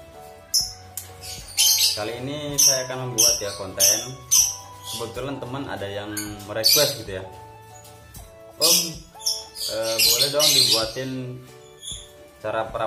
kali ini saya akan membuat ya konten. Kebetulan teman ada yang merequest gitu ya. Om, boleh dong dibuatin cara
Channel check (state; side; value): identical; both; correlation 1.00